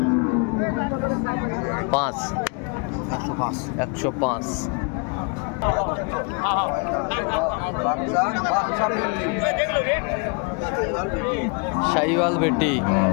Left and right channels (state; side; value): quieter; right; 35.0 dB